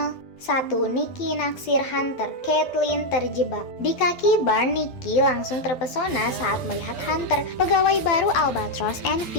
1. Nikki naksir Hunter, Caitlin terjebak. Di kaki bar, Nikki langsung terpesona saat melihat Hunter, pegawai baru Albatross and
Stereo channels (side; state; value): right; late; 11 ms